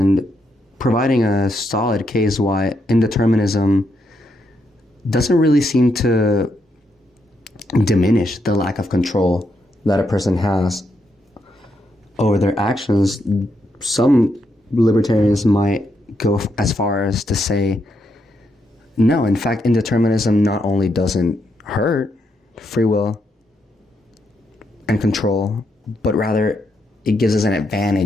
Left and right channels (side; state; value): both; normal; correlation 0.80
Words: providing a solid case why indeterminism doesn't really seem to diminish the lack of control that a person has over their actions, some libertarians might go as far as to say, no, in fact, indeterminism not only doesn't hurt free will and control, but rather it gives us an